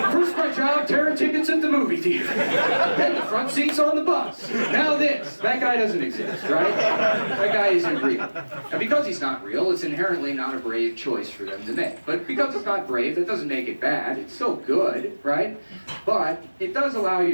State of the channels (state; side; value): inverted; both; correlation -1.00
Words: my job, tearing tickets at the movie theater. Then the front seats on the bus. Now this. That guy doesn't exist, right? That guy isn't real. And because he's not real, it's inherently not a brave choice for them to make. But because it's not brave, that doesn't make it bad. It's still good, right? But it does allow